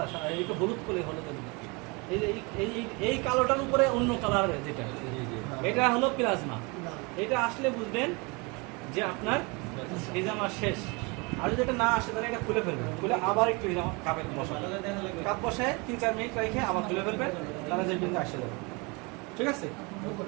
এইটা হলুদ করে হলুদ। এই যে এই কালোটার উপরে অন্য কালার যেটা, এটা হলো প্লাজমা। এটা আসলে বুঝবেন যে আপনার হিজামা শেষ। আর যদি এটা না আসে তাহলে এটা খুলে ফেলবেন, খুলে আবার একটু হিজামা কাপে বসাবেন, কাপ বসায় 3-4 মিনিট রেখে আবার খুলে ফেলবেন, তাহলে যে বিন্দু আসে যাবে। ঠিক আছে?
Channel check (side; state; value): left; quieter; 28.7 dB